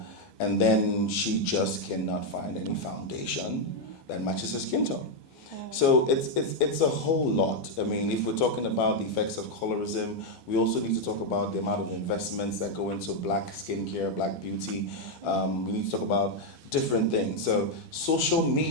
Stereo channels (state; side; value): late; right; 12 ms